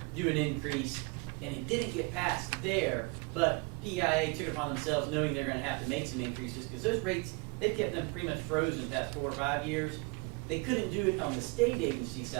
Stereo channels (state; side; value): quieter; left; 30.1 dB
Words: do an increase, and it didn't get passed there, but PEIA took it upon themselves knowing they're going to have to make some increases, because those rates, they've kept them pretty much frozen the past 4 or 5 years. They couldn't do it on the state agency